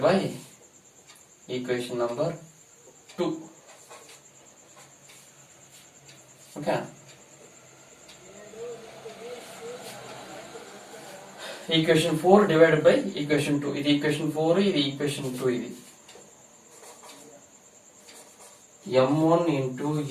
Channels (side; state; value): both; identical; correlation 1.00